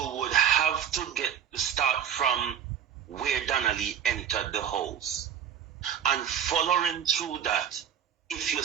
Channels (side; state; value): left; quieter; 9.2 dB